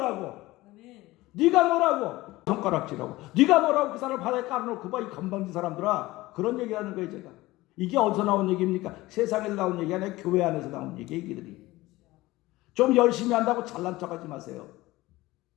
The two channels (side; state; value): right; quieter; 18.9 dB